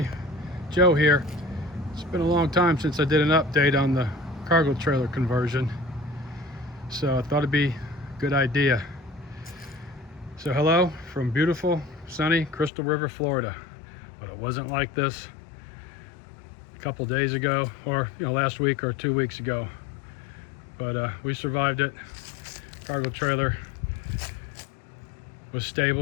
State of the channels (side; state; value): right; drops out; at 12.7 s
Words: Joe here. It's been a long time since I did an update on the cargo trailer conversion, so I thought it'd be a good idea. So hello from beautiful, sunny Crystal River, Florida. But it wasn't like this a couple days ago, or last week or 2 weeks ago. But we survived it. Cargo trailer was